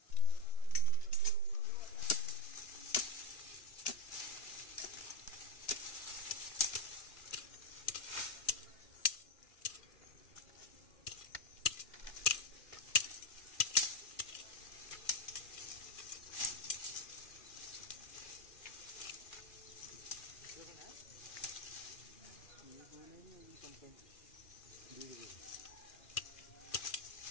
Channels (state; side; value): late; right; 2.4 ms